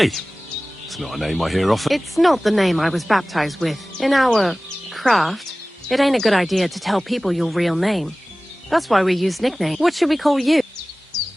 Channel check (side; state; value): both; normal; correlation 0.98